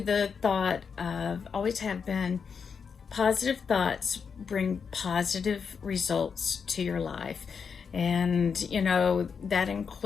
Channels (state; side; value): quieter; right; 6.2 dB